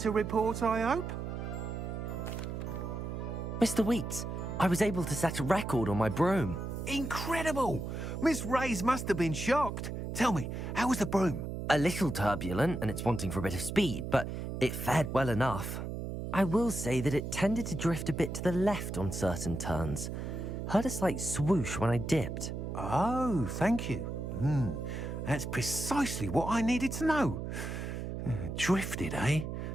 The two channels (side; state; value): right; noise; hum, 5 dB below the sound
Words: report, I hope? Mr. Weeks, I was able to set a record on my broom. Incredible! Miss Ray's must have been shocked. Tell me, how was the broom? A little turbulent, and it's wanting for a bit of speed, but it fared well enough. I will say that it tended to drift a bit to the left on certain turns. Heard a slight swoosh when I dipped. Oh, thank you. That's precisely what I needed to know. Drifted, eh?